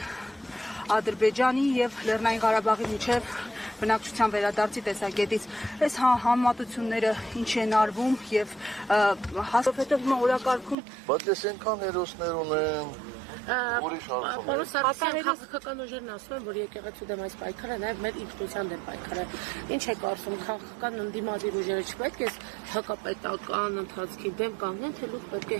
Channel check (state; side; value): drops out; left; at 10.8 s